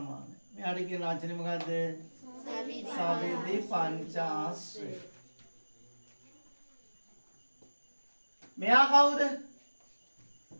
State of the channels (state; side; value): inverted; both; correlation -1.00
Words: මෙයාට කියන වචනේ මොකද්ද? සවිධි පංචාශ්‍රය. මෙයා කවුද?